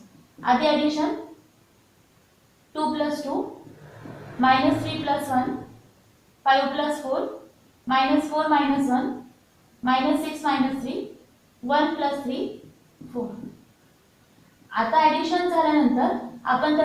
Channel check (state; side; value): identical; both; correlation 1.00